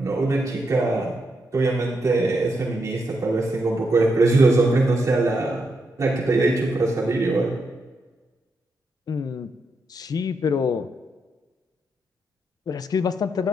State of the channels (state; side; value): normal; both; correlation 0.82